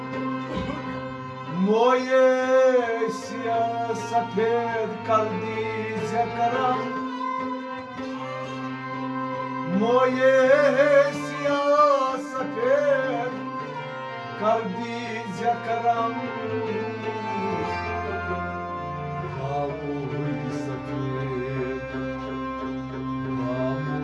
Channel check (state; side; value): identical; both; correlation 1.00